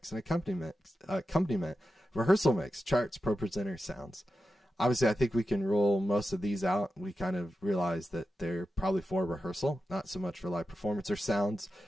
an accompaniment, rehearsal mix, charts, pro presenter, sounds. Obviously, I think we can rule most of these out. We kind of realize that they're probably for rehearsal, not so much for live performance or sounds.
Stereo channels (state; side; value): normal; both; correlation 0.91